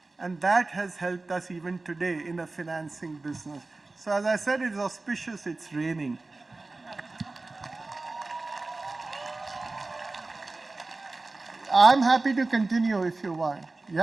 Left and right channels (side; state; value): left; quieter; 3.3 dB